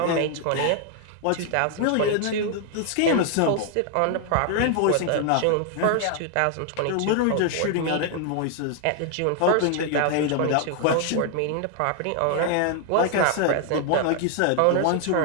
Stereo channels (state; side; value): different; both; correlation 0.00